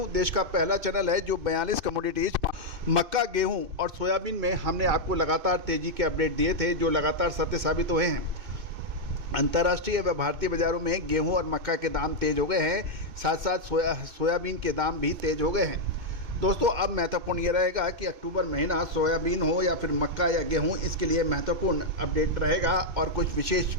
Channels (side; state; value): left; late; 2.6 ms